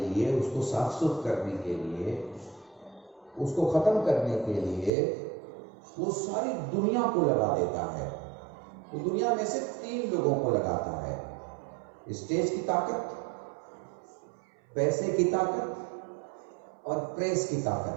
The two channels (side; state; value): left; drops out; at 4.9 s